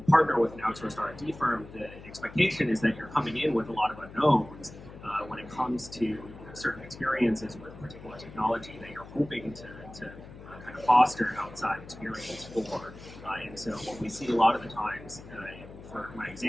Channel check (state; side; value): noise; left; hum, 16 dB below the sound